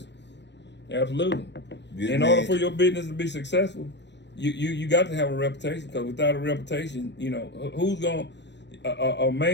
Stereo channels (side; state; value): right; late; 0.51 ms